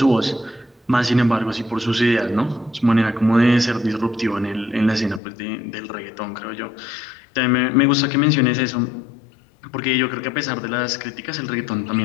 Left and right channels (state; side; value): drops out; right; at 5.2 s